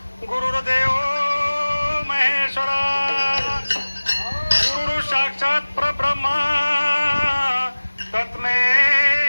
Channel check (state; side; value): inverted; both; correlation -1.00